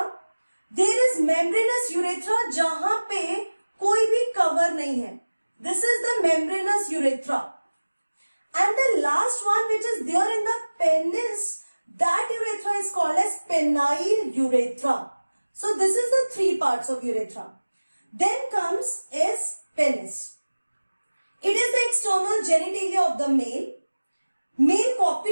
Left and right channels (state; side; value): inverted; both; correlation -1.00